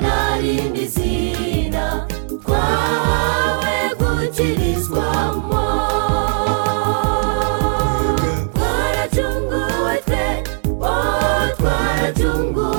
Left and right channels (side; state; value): left; silent; 67 dB below the other